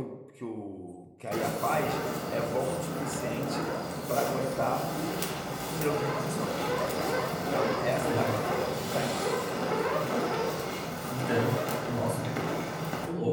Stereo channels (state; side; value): identical; both; correlation 1.00